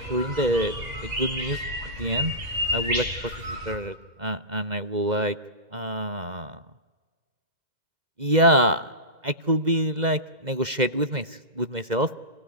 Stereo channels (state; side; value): late; left; 2.0 ms